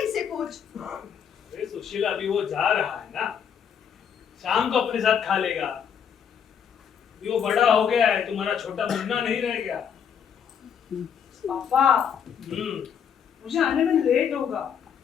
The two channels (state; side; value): quieter; right; 7.8 dB